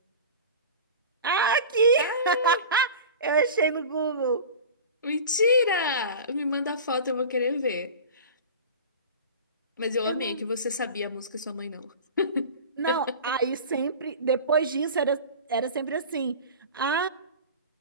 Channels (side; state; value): both; inverted; correlation -0.34